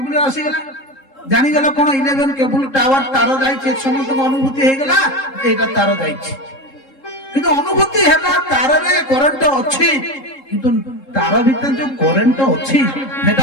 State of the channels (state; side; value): late; right; 3.7 ms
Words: ଆସିଗଲା, ଜାଣିଗଲା କଣ? 11 କେବୁଲ ଟାୱାର ତାର ଯାଇଛି। ସମସ୍ତଙ୍କ ଅନୁଭୂତି ହେଇଗଲା ଏଇଟା ତାର ଯାଇଛି। କିନ୍ତୁ ଅନୁଭୂତି ହେଲା ତାରରେ କରେଣ୍ଟ ଅଛି, କିନ୍ତୁ ତାର ଭିତରେ ଯୋଉ କରେଣ୍ଟ ଅଛି